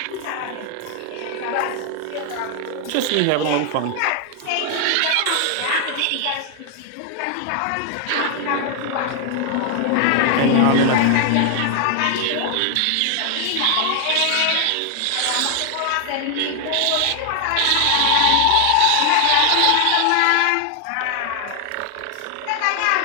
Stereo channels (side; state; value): both; different; correlation 0.00